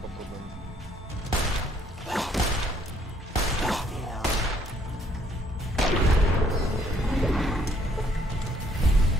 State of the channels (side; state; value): both; normal; correlation 0.66